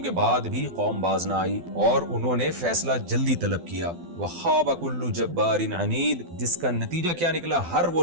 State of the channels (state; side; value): late; left; 12 ms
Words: کے بعد بھی قوم باز نہ آئی اور انہوں نے فیصلہ جلدی طلب کیا۔ وَخَابَ كُلُّ جَبَّارٍ عَنِيدٍ، جس کا نتیجہ کیا نکلا؟ ہر وہ